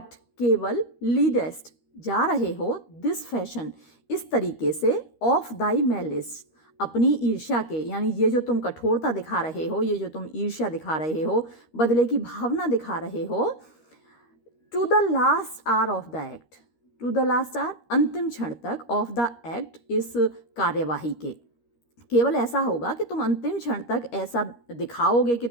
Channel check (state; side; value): late; right; 13 ms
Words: केवल, लीडेस्ट, जा रहे हो, दिस फैशन, इस तरीके से, ऑफ दाई मैलिस, अपनी ईर्ष्या के, यानी ये जो तुम कठोरता दिखा रहे हो, ये जो तुम ईर्ष्या दिखा रहे हो, बदले की भावना दिखा रहे हो, to the last hour of the act, to the last hour, अंतिम क्षण तक, ऑफ द एक्ट, इस कार्यवाही के, केवल ऐसा होगा कि तुम अंतिम क्षण तक ऐसा दिखाओगे कि